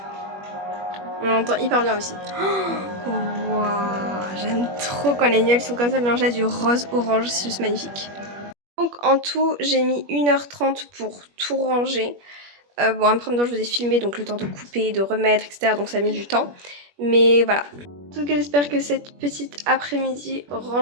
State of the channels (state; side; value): late; left; 21 ms